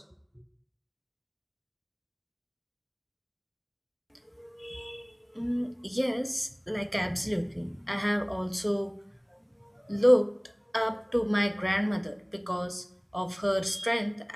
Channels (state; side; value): identical; both; correlation 1.00